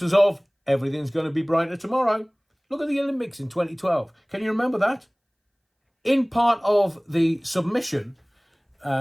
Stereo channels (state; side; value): identical; both; correlation 1.00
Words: of everything's going to be brighter tomorrow. Look at the Olympics in 2012. Can you remember that? In part of the submission